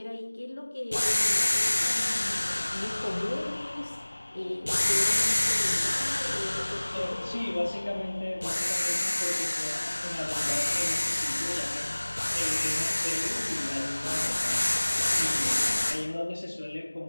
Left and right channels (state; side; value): inverted; both; correlation -1.00